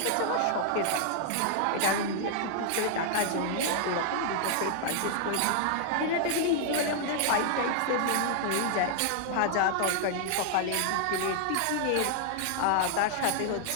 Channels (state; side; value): different; both; correlation 0.00